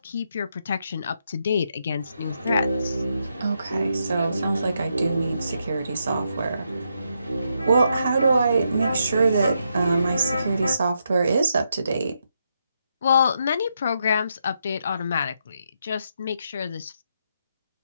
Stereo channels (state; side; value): inverted; both; correlation -0.80